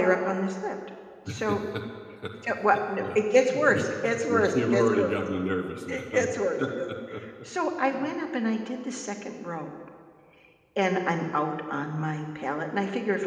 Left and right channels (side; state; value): both; identical; correlation 1.00